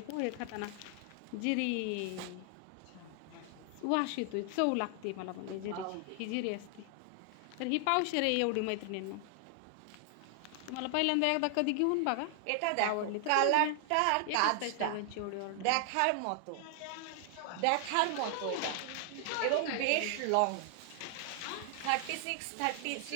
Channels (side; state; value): both; different; correlation 0.00